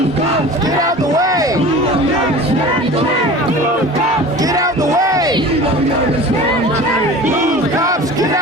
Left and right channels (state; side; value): normal; both; correlation 0.39